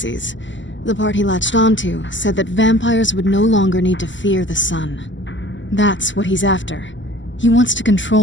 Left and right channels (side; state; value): right; late; 0.54 ms